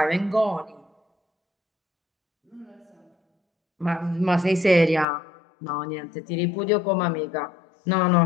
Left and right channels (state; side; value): drops out; right; at 5.1 s